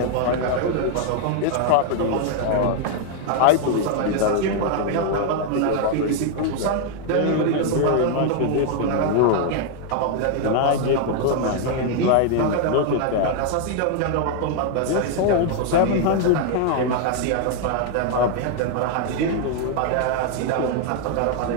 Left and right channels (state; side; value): different; both; correlation 0.00